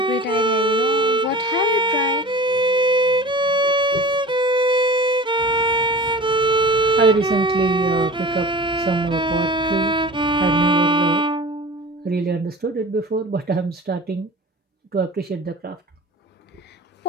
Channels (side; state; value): both; normal; correlation 0.38